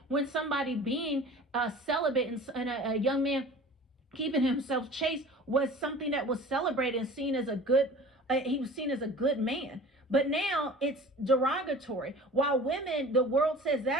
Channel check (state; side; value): normal; both; correlation 0.42